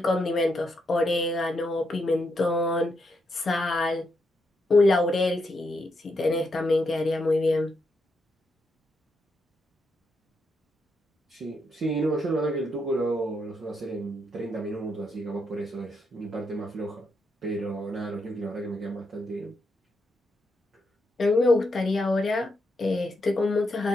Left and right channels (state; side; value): normal; both; correlation 0.81